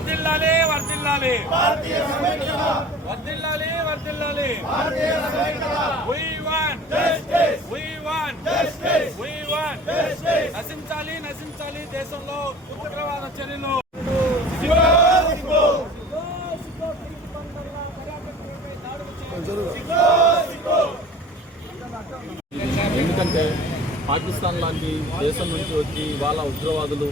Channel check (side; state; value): both; normal; correlation 0.43